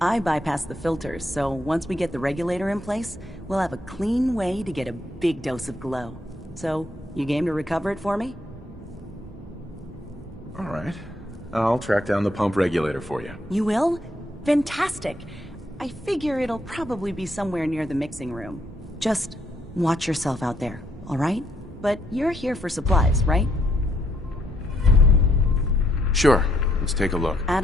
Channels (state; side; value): normal; both; correlation 0.74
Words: I bypassed the filters, so once we get the regulator in place, we'll have a clean way to get a big dose of glow. So, you game to recover it for me? All right. I'll track down the pump regulator for you. You will? Fantastic. I figure it'll probably be somewhere near the mixing room. Just watch yourself out there, all right? But you're here for supplies, right? Sure. Let's take a look.